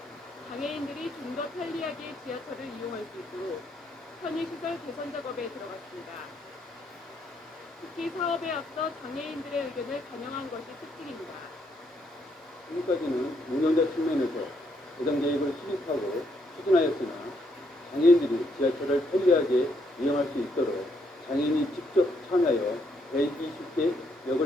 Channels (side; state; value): both; normal; correlation 0.74